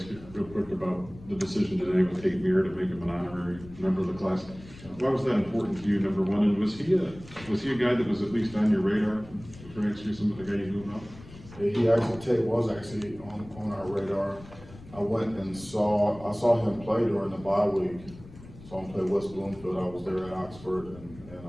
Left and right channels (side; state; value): left; noise; rumble, 19 dB below the sound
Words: you real quick about the decision today with Kate Muir to make him an honorary member of the class. Why was that important to you, number one? And was he a guy that was at least on your radar for next year, some of the guy you moved up? Tate was actually on our radar. I went and saw him play during the bye week. Saw him play West Bloomfield. I was there at Oxford and